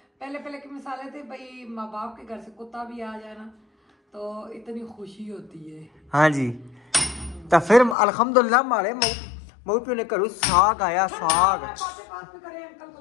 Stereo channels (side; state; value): right; drops out; at 8.0 s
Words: पहले पहले के मिसाले थे भाई, माँ बाप के घर से कुत्ता भी आ जाए ना तो इतनी खुशी होती है। हाँ जी, तो फिर अल्हम्दुलिल्लाह मारे मऊ पे ने करू साग आया, साग। पास में करे, अंकल को